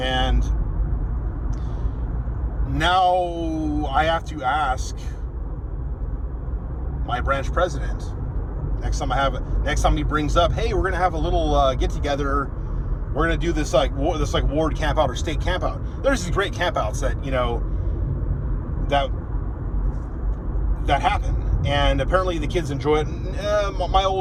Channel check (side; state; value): both; identical; correlation 1.00